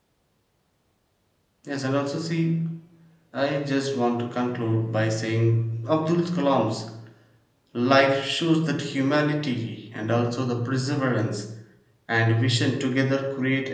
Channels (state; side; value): identical; both; correlation 1.00